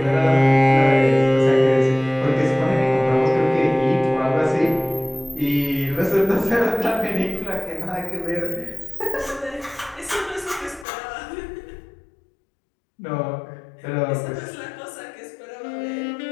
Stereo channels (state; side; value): drops out; right; at 10.9 s